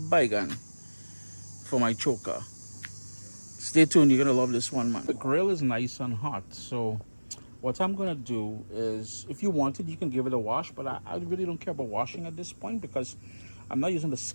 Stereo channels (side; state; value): both; inverted; correlation -1.00